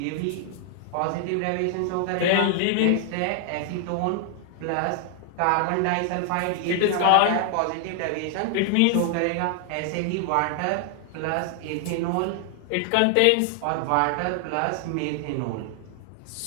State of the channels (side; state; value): both; different; correlation 0.00